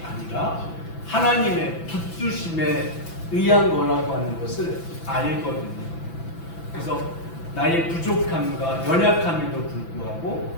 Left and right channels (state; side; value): late; right; 6.0 ms